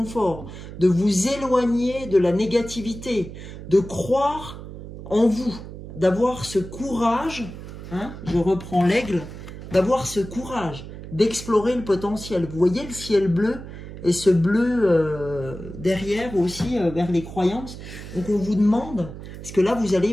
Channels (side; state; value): right; noise; hum, 12 dB below the sound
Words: de vous éloigner de la négativité, de croire en vous, d'avoir ce courage, hein, je reprends l'aigle, d'avoir ce courage, d'explorer le potentiel. Vous voyez le ciel bleu et ce bleu derrière aussi vers les croyances. Donc on vous demande, parce que là vous allez